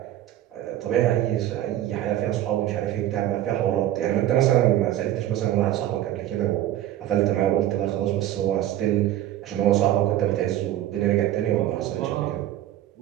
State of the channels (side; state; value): left; quieter; 13.0 dB